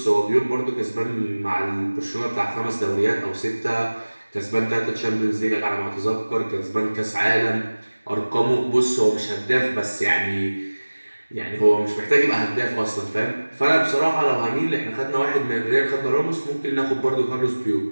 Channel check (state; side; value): inverted; both; correlation -1.00